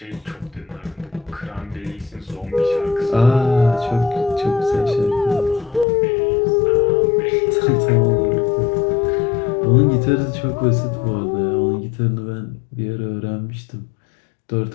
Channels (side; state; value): right; drops out; at 5.9 s